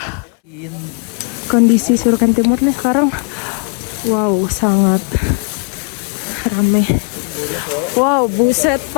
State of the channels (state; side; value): quieter; right; 37.4 dB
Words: Kondisi Surken Timur nih sekarang, wow, sangat ramai. Wow, buset